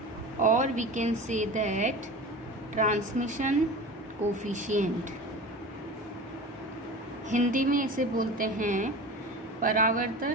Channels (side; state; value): both; normal; correlation 0.33